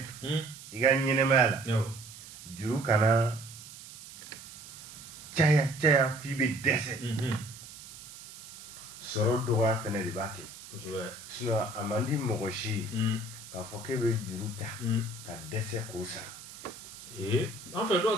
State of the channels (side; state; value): right; noise; hiss, 15 dB below the sound